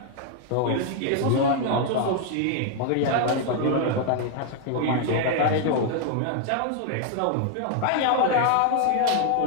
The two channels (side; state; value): both; different; correlation 0.00